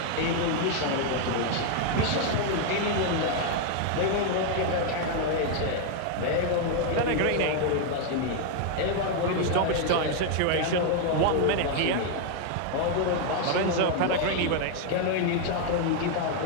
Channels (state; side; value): different; both; correlation 0.00